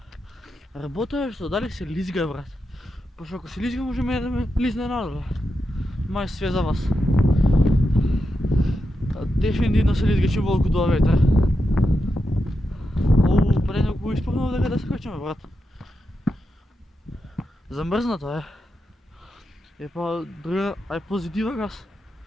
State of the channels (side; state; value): both; normal; correlation 0.87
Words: работа е што дали се лизга, брат. Пошто ако се лизга може да ме лизне надоле. Мај све за вас. Дефинитивно се лизга чим волку дува ветер. Пред некој испрнува дека да се качаме, брат. Замрзнато е. Е па друга, ај позитива газ.